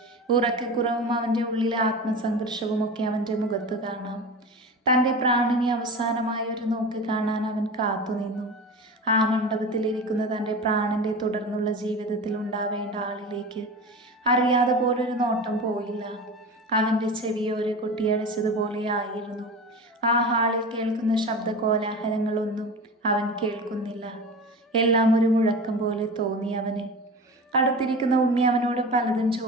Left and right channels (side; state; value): both; normal; correlation 0.31